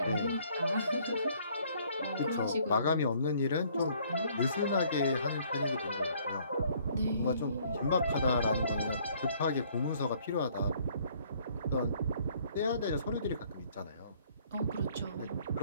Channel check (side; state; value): both; inverted; correlation -0.61